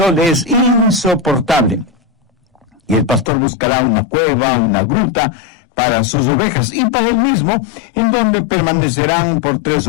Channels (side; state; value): right; drops out; at 3.3 s